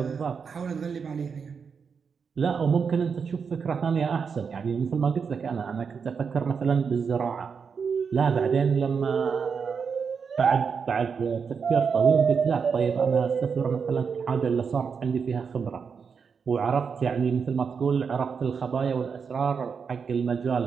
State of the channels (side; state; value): left; quieter; 6.0 dB